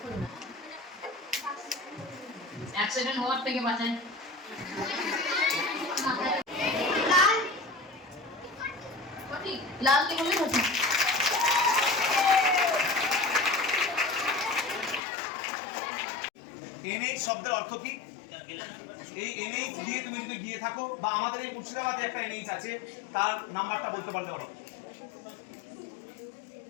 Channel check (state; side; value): drops out; right; at 15.0 s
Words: অ্যাক্সিডেন্ট হওয়ার থেকে বাঁচায়। লাল। সঠিক। লাল কে বললে সঠিক। এনএইচ শব্দের অর্থ কি? এই এনএইচ দিয়ে তুমি যদি গিয়ে থাকো বা আমাদের এই মুর্শিদাবাদে একটা এনএইচ আছে, তার নাম্বারটা বলতে পারলে পারো?